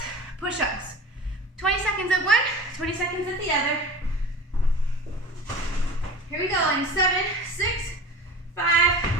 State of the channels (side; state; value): both; normal; correlation 0.37